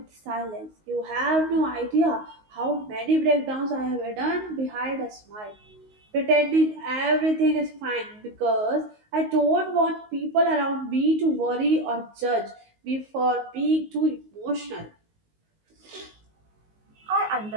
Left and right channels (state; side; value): late; left; 19 ms